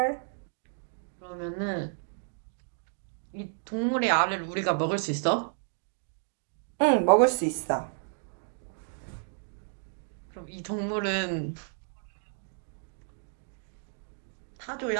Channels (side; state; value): left; silent; digital silence